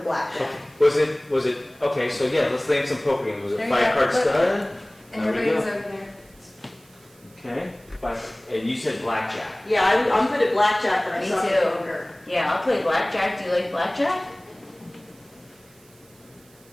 blackjack. Was it, okay, so yeah, let's name some poker games. Was it There you 5 go. card Look. stud? And There we everybody's go. over there. Okay, and you said blackjack. Yeah, I'm good at blackjack, but I Me suck at too. poker. Yeah, I'll play blackjack. Do you like blackjack?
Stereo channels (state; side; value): noise; right; hiss, 28 dB below the sound